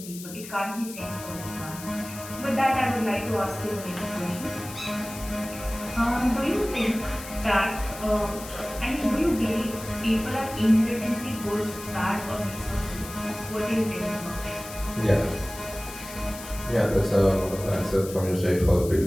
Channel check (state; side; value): noise; left; hiss, 13 dB below the sound